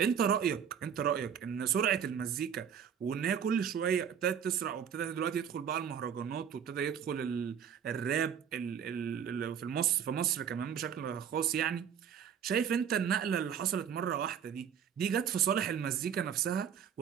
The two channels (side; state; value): left; quieter; 8.2 dB